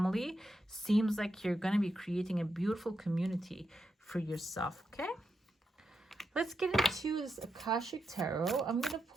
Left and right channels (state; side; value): normal; both; correlation 0.86